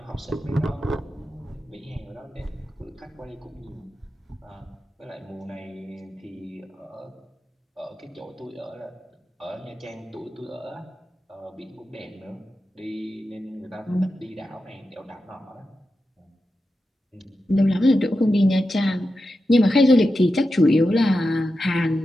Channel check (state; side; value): normal; both; correlation 0.90